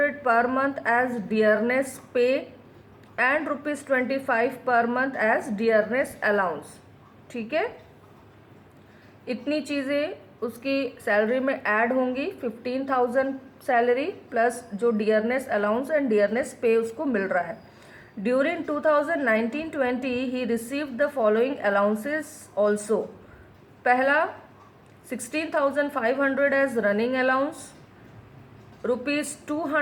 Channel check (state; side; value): identical; both; correlation 1.00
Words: per month as dearness pay and rupees 25 per month as dearness allowance. ठीक है, इतनी चीज़ें उसकी salary में add होंगी. 15,000 salary plus जो डियरनेस अलाउंस एंड डियरनेस पे उसको मिल रहा है. During 2019-20 he received the following allowances also. पहला 16,500 as running allowance, rupees